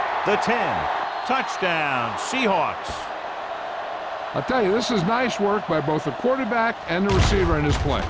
The 10, touchdown, Seahawks. I'll tell you, this is nice work by both the quarterback and the receiver in his play.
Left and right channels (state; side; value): identical; both; correlation 1.00